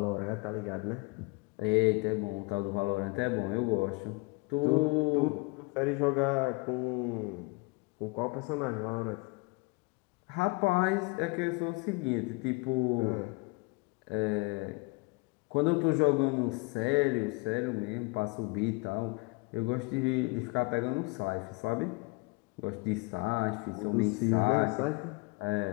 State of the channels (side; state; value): right; quieter; 27.9 dB